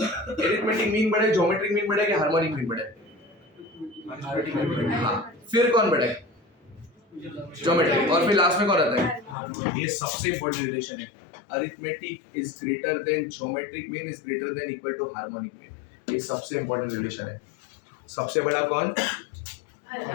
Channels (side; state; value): right; drops out; at 9.3 s